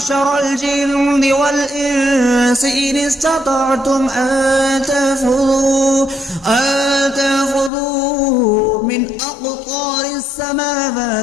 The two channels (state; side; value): drops out; right; at 7.7 s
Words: الجن والإنس إن استطعتم أن تنفذوا من أقطار